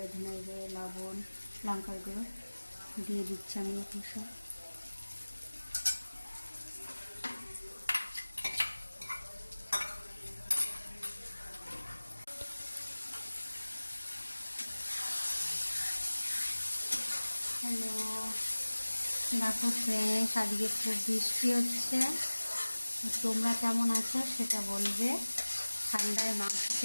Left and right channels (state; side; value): inverted; both; correlation -1.00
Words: ধনে গুঁড়ো, লবণ, লঙ্কার গুঁড়ো দিয়ে দিচ্ছি আমি এখন সব। হ্যালো, দেখো ফ্রেন্ডস, আজকে খুব বৃষ্টি হচ্ছে। তোমরা কেমন আছো সেটা বলবে। ঠান্ডায় মাংস